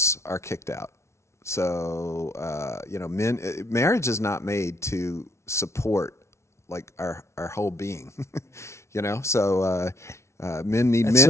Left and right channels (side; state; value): right; late; 0.13 ms